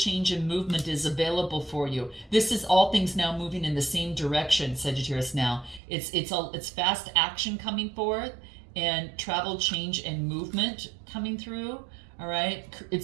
and movement is available for you. This is all things now moving in the same direction, Sagittarius now. It's fast action coming forth, and travel, change, and movement coming through. All right?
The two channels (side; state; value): left; drops out; at 5.8 s